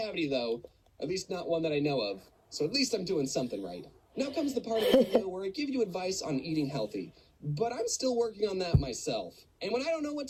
though, at least not one that I know of. So at least I'm doing something right. Now comes the part of the video where I give you advice on eating healthy. But I'm still working on that myself. And when I don't know what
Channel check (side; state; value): both; identical; correlation 1.00